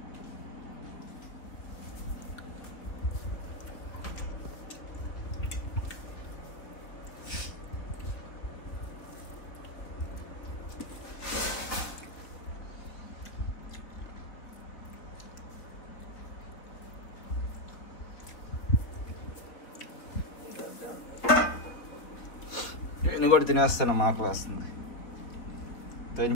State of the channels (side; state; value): right; late; 4.0 ms